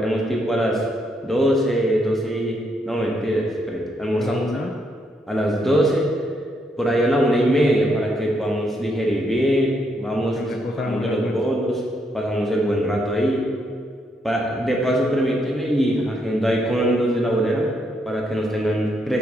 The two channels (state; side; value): normal; both; correlation 0.76